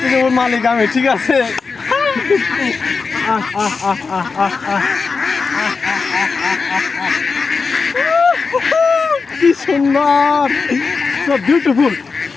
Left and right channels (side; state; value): right; quieter; 4.7 dB